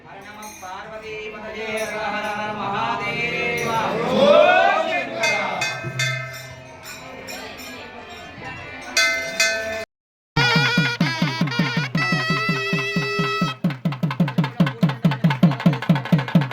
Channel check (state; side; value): identical; both; correlation 1.00